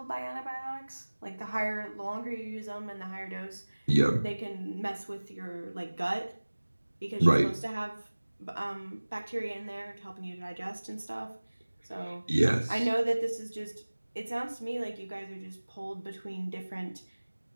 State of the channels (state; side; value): inverted; both; correlation -1.00